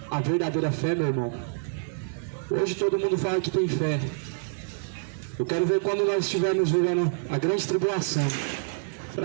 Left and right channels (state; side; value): silent; left; 56 dB below the other